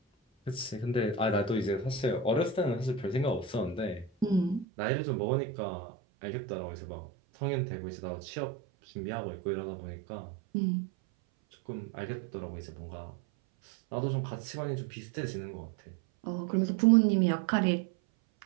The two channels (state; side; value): drops out; left; at 4.7 s